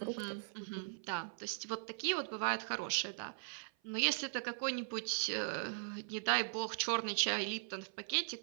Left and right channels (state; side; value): silent; left; 51 dB below the other